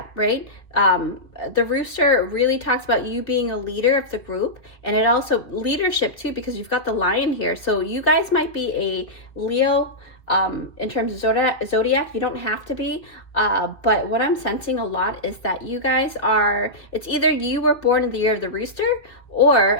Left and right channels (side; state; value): right; late; 2.0 ms